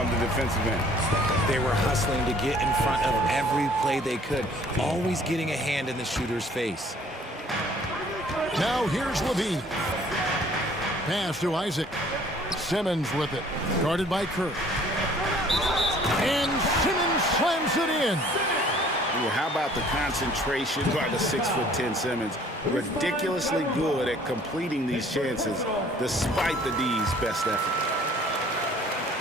the defensive end. They were hustling to get in front of every play they could, always getting a hand in the shooter's face. Now here's Levine. Pass to Isaac. Simmons with it, guarded by Kerr. And Simmons slams it in. Well, how about the concentration by the 6'10" Simmons? Ridiculously good at completing these chances despite the D's best effort.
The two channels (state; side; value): normal; both; correlation 0.55